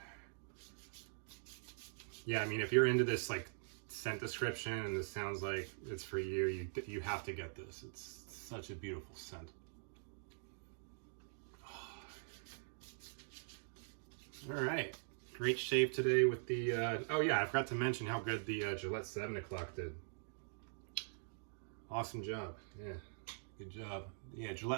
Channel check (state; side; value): silent; left; digital silence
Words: Yeah, I mean, if you're into this like scent description and this sounds like it's for you, you have to get this. It's such a beautiful scent. All right, great shave today with the, oh yeah, I forgot to mention how good the Gillette 7 o'clock did. Awesome job, yeah, good job. Yeah,